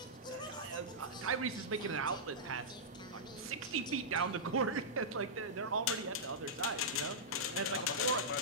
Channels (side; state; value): both; normal; correlation -0.13